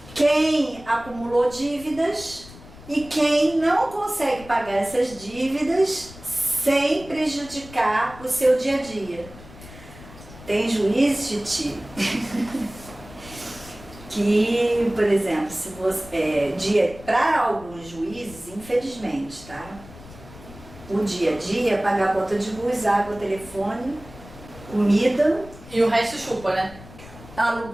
quem acumulou dívidas e quem não consegue pagar essas dívidas sem prejudicar o seu dia a dia. Tem juiz, Titi, que, por exemplo, se você, para alguns juízes, infelizmente, tá? O dia a dia, pagar a conta de luz, água, telefone, comida. E o resto chupa, né?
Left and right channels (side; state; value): left; noise; rumble, 18 dB below the sound